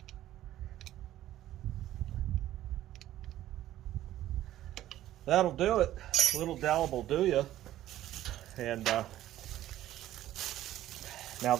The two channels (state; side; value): quieter; left; 13.5 dB